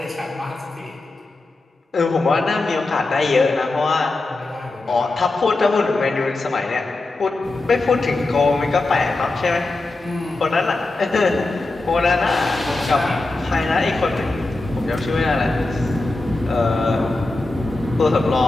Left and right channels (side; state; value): right; quieter; 3.1 dB